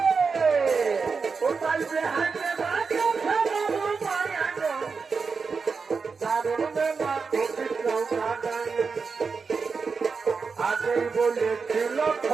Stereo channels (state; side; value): quieter; left; 5.0 dB